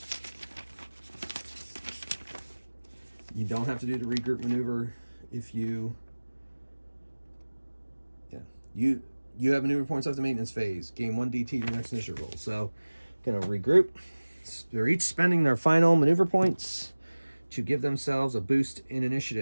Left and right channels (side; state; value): both; inverted; correlation -1.00